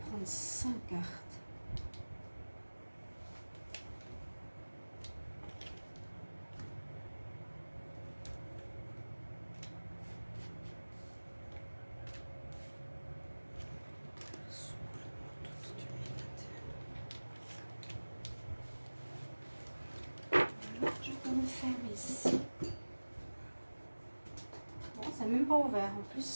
5 cartes. Je vais me fermer ici. Bon, c'est même pas ouvert en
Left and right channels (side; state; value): both; inverted; correlation -1.00